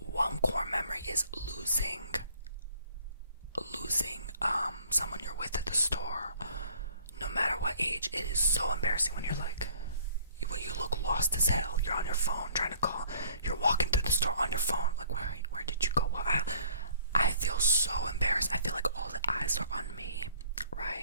core memory is losing someone you're with at the store. No matter what age, it is so embarrassing when you're like, when you look lost as hell. You're on your phone trying to call. You're walking through the store on your phone. Like, where did you go? Well, I feel so embarrassed. I feel like all the eyes are on me,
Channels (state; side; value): inverted; both; correlation -0.56